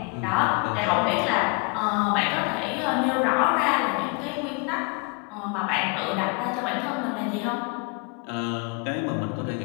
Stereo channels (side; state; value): right; quieter; 32.4 dB